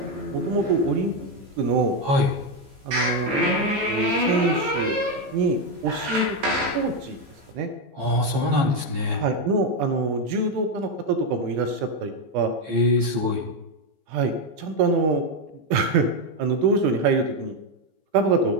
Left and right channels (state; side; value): late; left; 15 ms